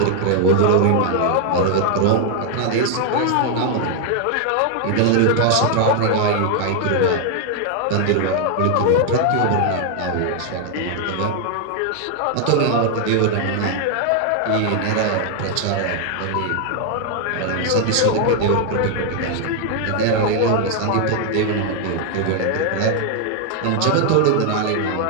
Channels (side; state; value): both; different; correlation 0.00